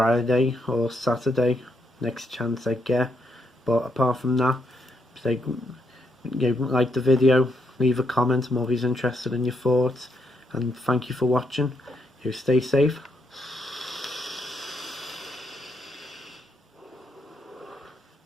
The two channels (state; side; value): normal; both; correlation 0.77